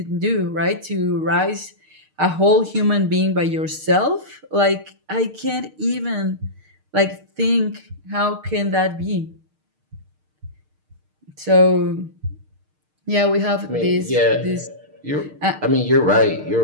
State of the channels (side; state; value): left; late; 6.5 ms